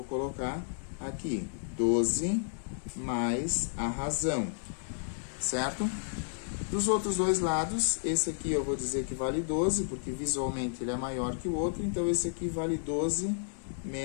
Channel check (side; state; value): right; silent; 56 dB below the other